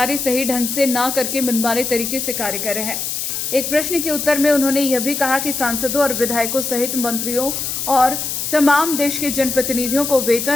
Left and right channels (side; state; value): left; noise; hiss, 3 dB below the sound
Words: सही ढंग से न करके मनमाने तरीके से कार्य कर रहे हैं। एक प्रश्न के उत्तर में उन्होंने यह भी कहा कि सांसदों और विधायकों सहित मंत्रियों और तमाम देश के जनप्रतिनिधियों को